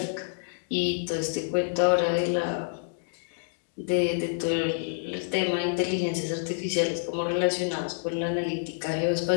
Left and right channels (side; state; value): right; silent; digital silence